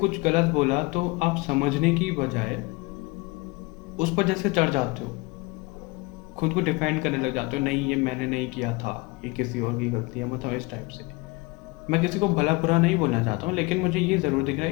गलत बोला तो आप समझने की बजाय उस पर जैसे चढ़ जाते हो, खुद को डिफेंड करने लग जाते हो, नहीं ये मैंने नहीं किया था, ये किसी और की गलती है, मतलब इस टाइप से। मैं किसी को भला बुरा नहीं बोलना चाहता हूँ, लेकिन मुझे ये ज़रूर दिख रहा है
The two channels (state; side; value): quieter; right; 25.1 dB